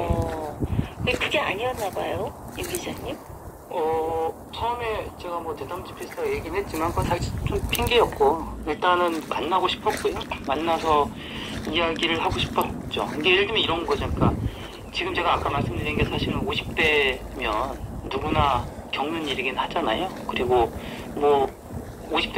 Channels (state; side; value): identical; both; correlation 1.00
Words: 근데 그게 아니었나 봐요, 임 기자님. 처음에 제가 뭐 대담집 비슷하게 얘기는 했지만 그건 사실 좀 핑계였고 일단은 만나고 싶었고요. 만나서 이야기를 하고 싶었죠. 이게 예를 들면 이런 거죠. 그러니까 지금 제가 아까 말씀드린 게 사실은 50대면 누구나 겪는 일이긴 하잖아요. 그리고 뭐